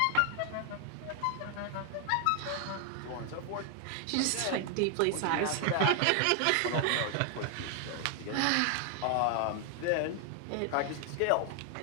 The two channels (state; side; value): different; both; correlation 0.00